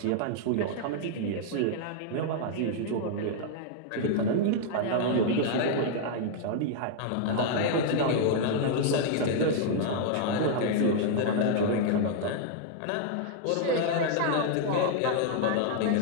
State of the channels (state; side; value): different; both; correlation -0.01